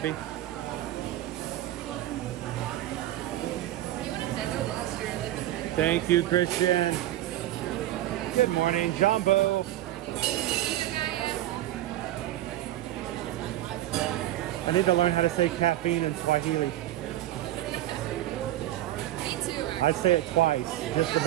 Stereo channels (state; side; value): quieter; left; 14.3 dB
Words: Thank you, Christian. Good morning, Jumbo. I need to learn how to say caffeine in Swahili. Me too. I say it twice just to